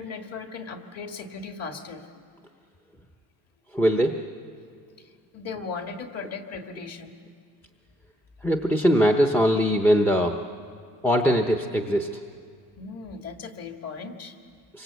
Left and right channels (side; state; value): both; normal; correlation 0.75